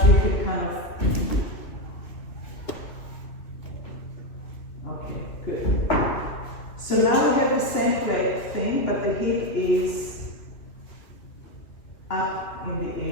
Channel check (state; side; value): late; right; 2.6 ms